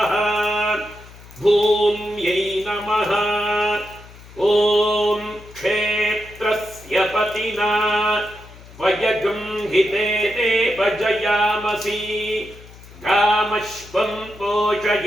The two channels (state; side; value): noise; left; hum, 20 dB below the sound